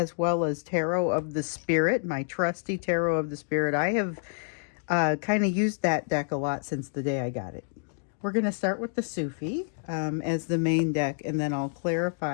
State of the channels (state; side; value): silent; right; digital silence